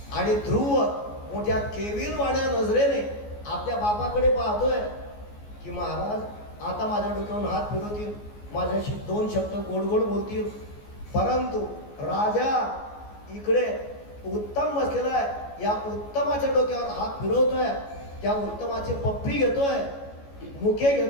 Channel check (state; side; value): late; right; 14 ms